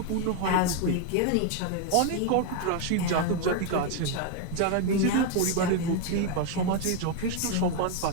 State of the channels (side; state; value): both; different; correlation 0.01